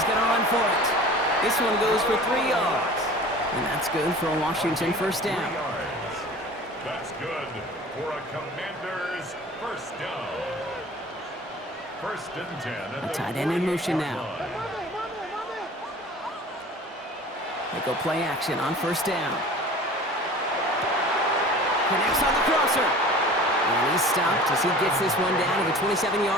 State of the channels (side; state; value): both; normal; correlation 0.42